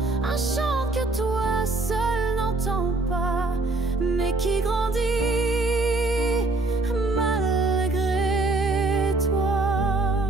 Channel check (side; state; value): left; quieter; 3.2 dB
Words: un chant que toi seul n'entends pas, mais qui grandit malgré toi.